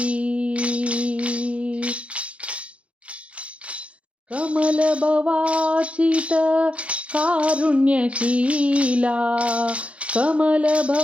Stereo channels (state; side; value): late; left; 0.063 ms